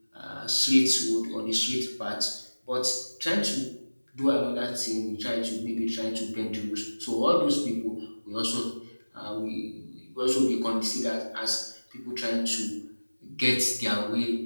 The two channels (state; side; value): inverted; both; correlation -1.00